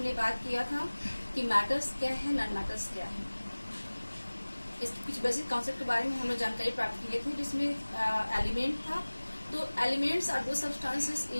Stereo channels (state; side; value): inverted; both; correlation -1.00